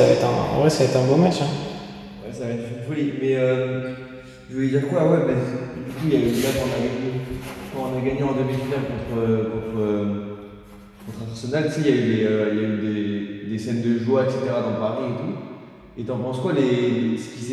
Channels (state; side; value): identical; both; correlation 1.00